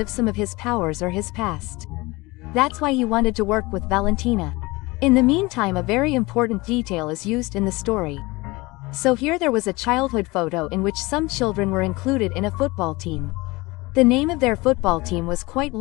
some of his powers or his past. That's why he wanted to work with Valentina. In the meantime, a very important detail is used in the story. So here there was a childhood photo in which some children were included in a football team. The name of their football team was quite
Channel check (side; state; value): right; quieter; 22.7 dB